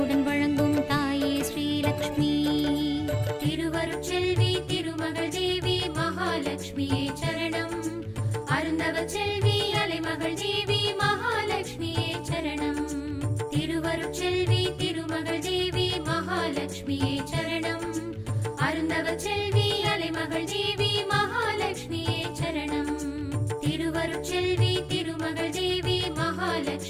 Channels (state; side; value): identical; both; correlation 1.00